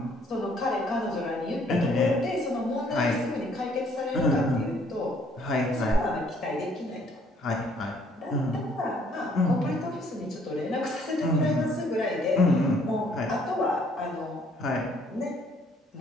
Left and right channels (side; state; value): both; normal; correlation 0.63